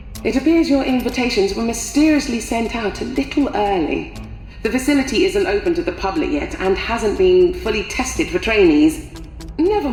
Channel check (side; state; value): both; identical; correlation 1.00